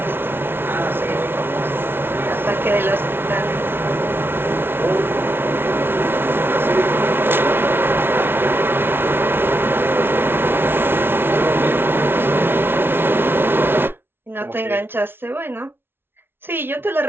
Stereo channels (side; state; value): left; late; 0.11 ms